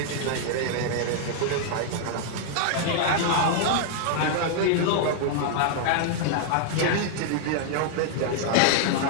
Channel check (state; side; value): different; both; correlation 0.00